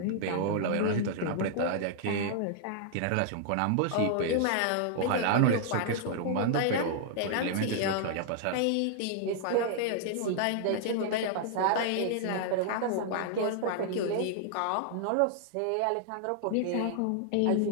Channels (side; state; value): both; different; correlation -0.01